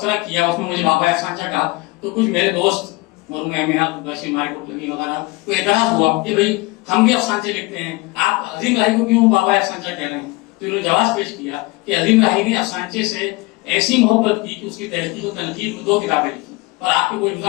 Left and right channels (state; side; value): quieter; right; 22.9 dB